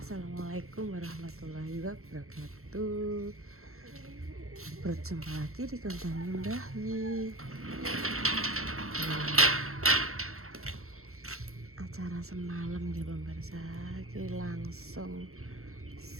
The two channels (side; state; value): left; late; 0.63 ms